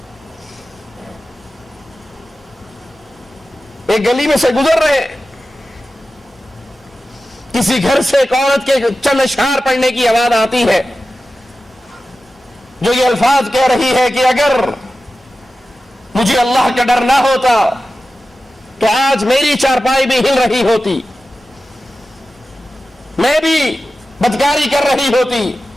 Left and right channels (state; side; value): normal; both; correlation 0.94